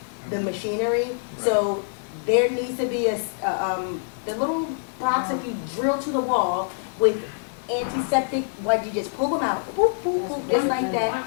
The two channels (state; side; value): silent; right; digital silence